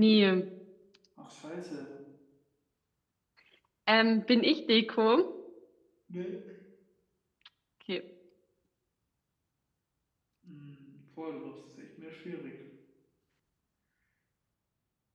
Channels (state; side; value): identical; both; correlation 1.00